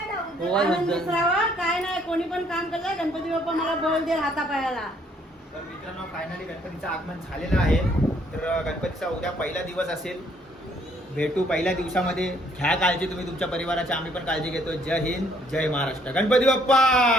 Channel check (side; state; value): both; normal; correlation 0.65